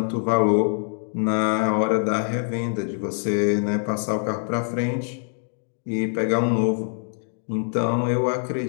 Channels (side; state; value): right; silent; 57 dB below the other